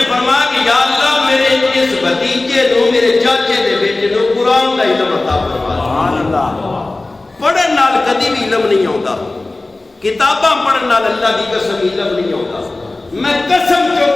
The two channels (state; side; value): quieter; right; 3.0 dB